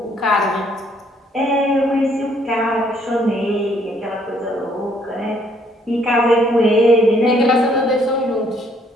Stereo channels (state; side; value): normal; both; correlation 0.66